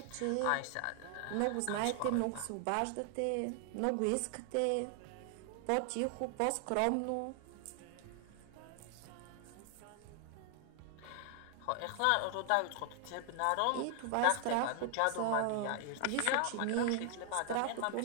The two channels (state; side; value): different; both; correlation 0.00